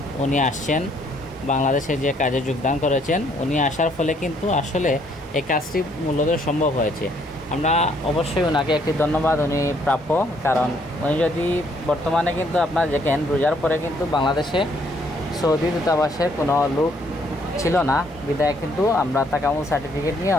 উনি আসছেন, বাংলাদেশে যে কাজে যোগদান করেছেন, উনি আসার ফলে কিন্তু আসলে এই কাজটি মূলত সম্ভব হয়েছে। আমরা অবশ্যই ওনাকে একটি ধন্যবাদ, উনি প্রাপ্য। কারণ উনি যদি বর্তমানে কিন্তু আপনার দেখেন রোজার পরে কিন্তু বাংলাদেশে সৌদি দূতাবাসের কোনো লোক ছিল না, বিদায় কিন্তু আমরা তাকামুল সার্টিফিকেট নিয়ে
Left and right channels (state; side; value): normal; both; correlation 0.67